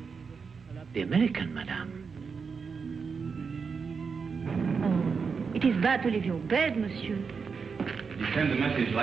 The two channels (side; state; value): left; quieter; 5.5 dB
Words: The American, madame. Oh, it is bad to leave your bed, monsieur. You send the message